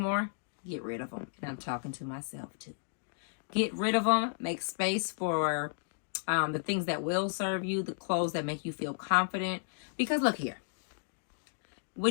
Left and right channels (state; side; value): silent; right; digital silence